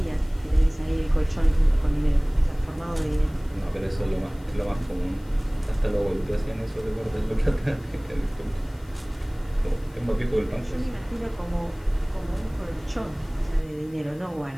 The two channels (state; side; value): noise; left; hiss, 28 dB below the sound